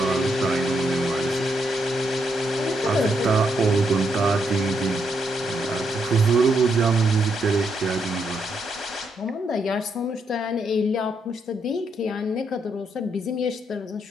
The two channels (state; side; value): normal; both; correlation 0.78